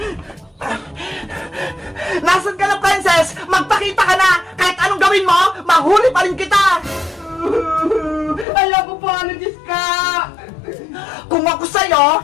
Nasaan ka na, Princess? Magpakita ka na. Kahit anong gawin mo, mahuli pa rin kita. Ayoko po, Aling Iska. Kung ako sa'yo,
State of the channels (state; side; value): drops out; right; at 8.5 s